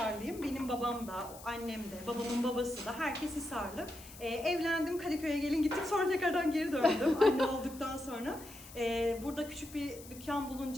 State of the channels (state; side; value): noise; left; hiss, 17 dB below the sound